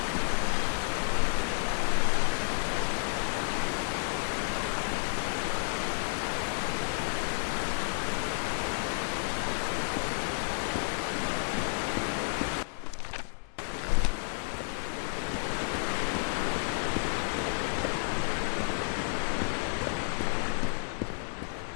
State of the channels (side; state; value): right; silent; digital silence